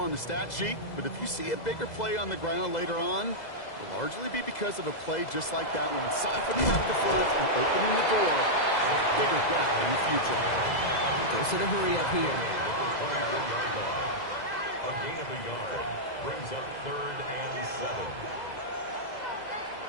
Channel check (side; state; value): right; late; 2.0 ms